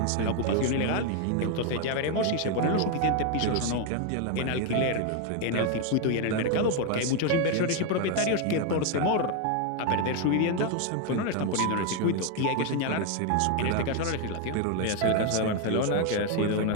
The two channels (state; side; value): different; both; correlation 0.01